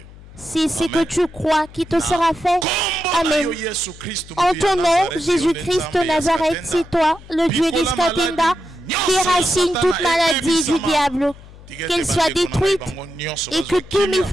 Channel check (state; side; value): noise; left; hum, 20 dB below the sound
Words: c'est ce que tu crois qui te sera fait. Amen. En ton nom, Jésus-Christ de Nazareth, c'est toi, le Dieu d'Iskatenda, déracine toute maladie du diable, qu'elle soit détruite et que tous mes